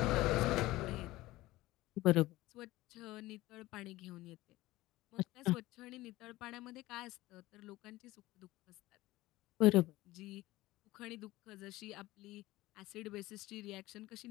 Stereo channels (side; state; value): right; quieter; 18.0 dB